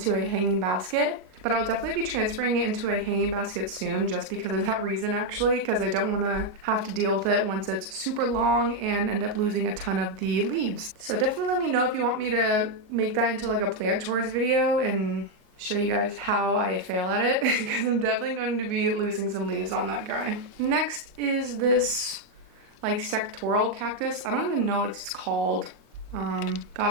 a hanging basket. But I'll definitely be transferring it into a hanging basket soon, just because of that reason actually, because I don't want to have to deal with it once it's super long and end up losing a ton of the leaves. So definitely let me know if you want me to make that into like a plant chores video and show you guys how I fail at it, because I'm definitely going to be losing some leaves on that guy. Next is this like sectoral cactus. I don't even know what it's called.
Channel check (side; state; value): left; late; 38 ms